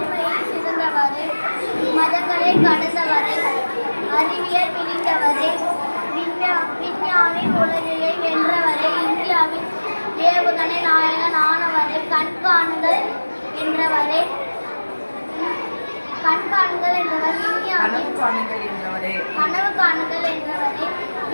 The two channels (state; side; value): inverted; both; correlation -1.00